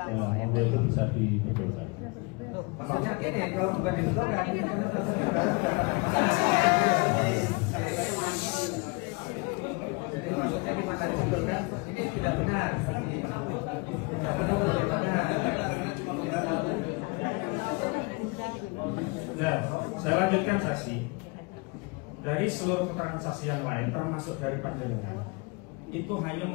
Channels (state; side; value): quieter; right; 28.7 dB